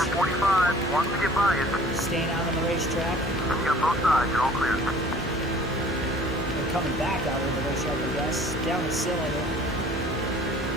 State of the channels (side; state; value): both; normal; correlation 0.50